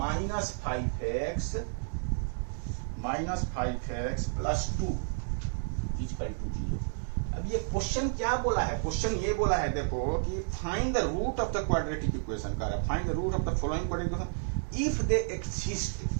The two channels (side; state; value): left; silent; digital silence